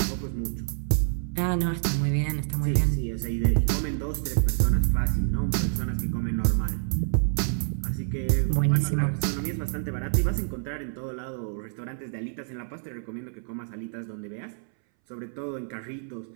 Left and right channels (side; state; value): left; silent; 60 dB below the other